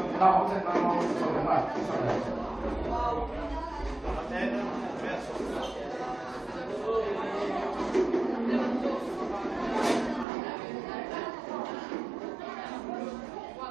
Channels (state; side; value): drops out; left; at 10.2 s